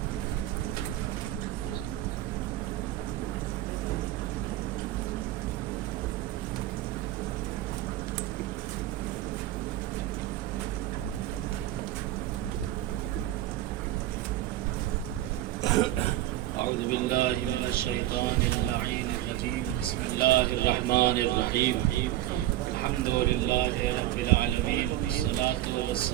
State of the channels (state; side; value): quieter; left; 14.6 dB